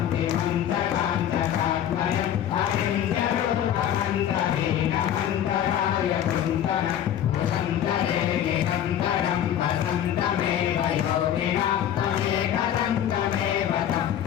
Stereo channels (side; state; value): right; quieter; 10.4 dB